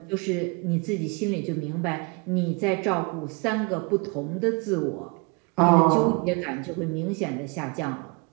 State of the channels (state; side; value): quieter; left; 30.9 dB